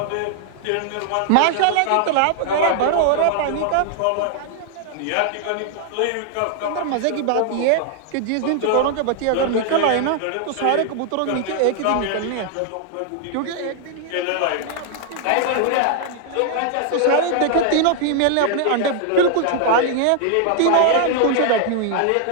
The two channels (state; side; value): different; both; correlation 0.00